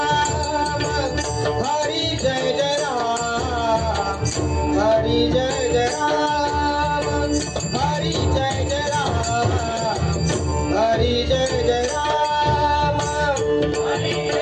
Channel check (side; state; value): both; identical; correlation 1.00